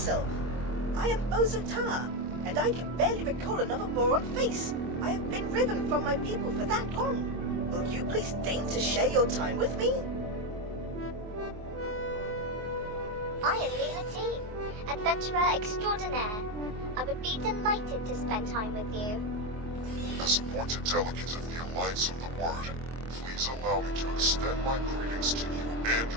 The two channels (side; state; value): left; late; 24 ms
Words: I am Bosota, and I can barely recall another boron face. I have been riven from my people for that long. Will you please deign to share your time with me? I am Lima, adventurer extraordinaire. I would be delighted to spend time with you. As appointed delegate of the Alliance of the Word, please allow me to extend my greetings to you and